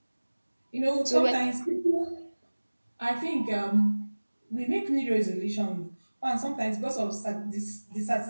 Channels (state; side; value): inverted; both; correlation -1.00